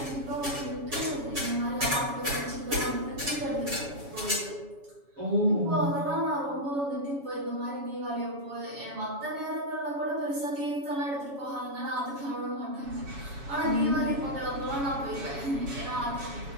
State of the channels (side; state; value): left; late; 7.1 ms